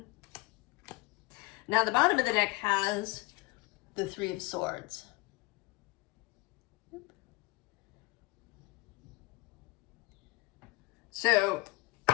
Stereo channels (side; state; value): right; quieter; 22.7 dB